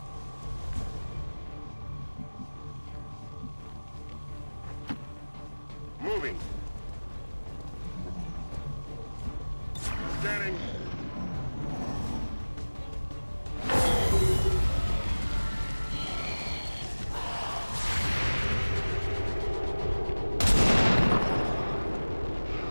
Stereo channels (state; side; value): inverted; both; correlation -1.00